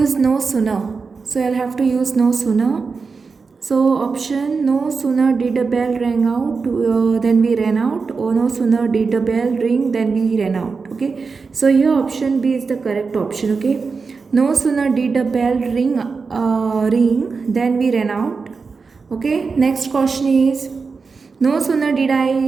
no sooner. So I'll have to use no sooner. So option, no sooner did the bell ring out, then we ran out, or no sooner did the bell ring, then we ran out. Okay, so here option B is the correct option. Okay, no sooner did the bell ring, then we ran out. Okay, next question is, no sooner did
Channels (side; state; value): left; quieter; 4.8 dB